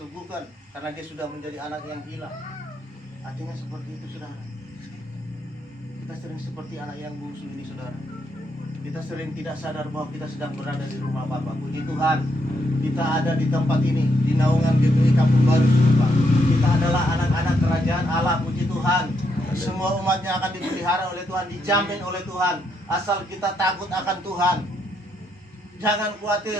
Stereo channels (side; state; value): both; normal; correlation 0.78